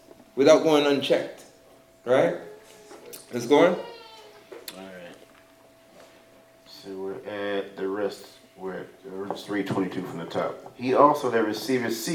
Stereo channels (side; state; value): both; identical; correlation 1.00